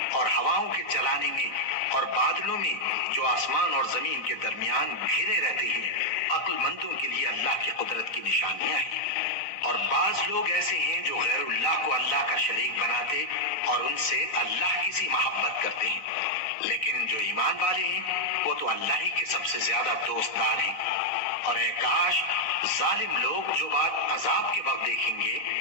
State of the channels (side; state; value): right; late; 3.9 ms